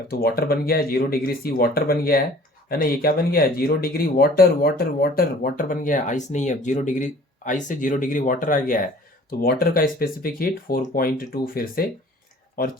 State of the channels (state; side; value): normal; both; correlation 0.50